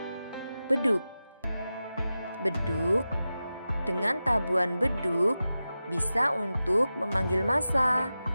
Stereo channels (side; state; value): both; inverted; correlation -0.93